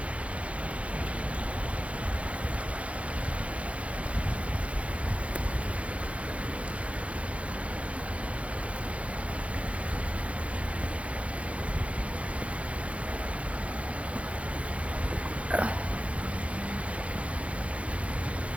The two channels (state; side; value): late; left; 0.063 ms